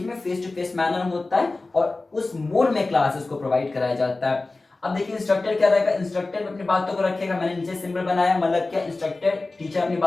में फेस टू फेस मैनर होता है और उस मोड में क्लासेस को प्रोवाइड कराया जाता है। अब देखिए इंस्ट्रक्टर क्या रहेगा, इंस्ट्रक्टर अपनी बातों को रखेगा, मैंने नीचे सिंबल बनाया, मतलब क्या, इंस्ट्रक्टर टीचर अपनी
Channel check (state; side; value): quieter; right; 3.3 dB